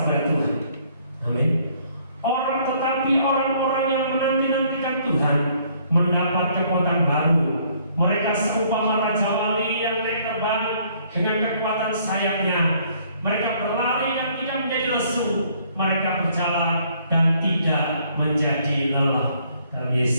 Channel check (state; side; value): inverted; both; correlation -0.63